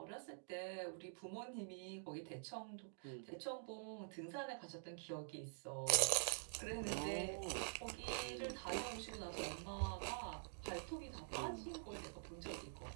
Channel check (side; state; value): left; silent; digital silence